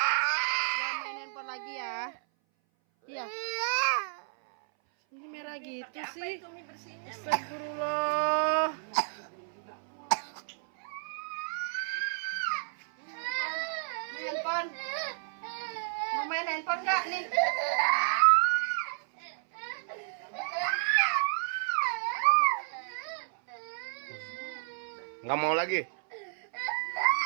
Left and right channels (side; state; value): left; silent; 57 dB below the other